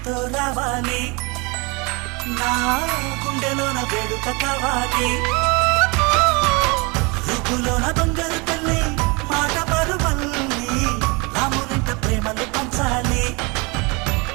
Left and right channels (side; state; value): left; quieter; 28.3 dB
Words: రావాలి నా గుండెలోన వేడుక కావాలి రూపులోన బంగారు తల్లి మాట పరువల్లి రామునింట ప్రేమలు పంచాలి